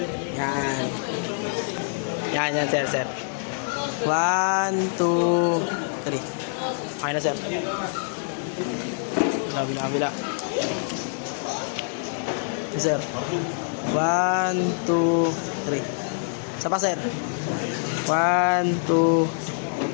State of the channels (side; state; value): right; silent; 61 dB below the other